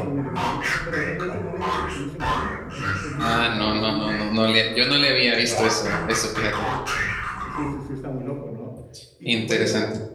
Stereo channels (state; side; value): identical; both; correlation 1.00